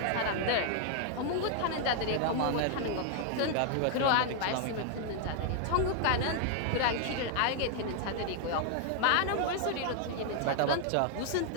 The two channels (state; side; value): different; both; correlation 0.00